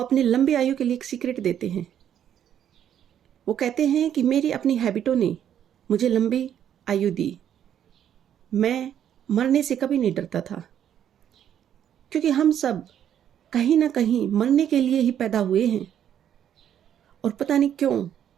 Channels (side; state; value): left; quieter; 9.9 dB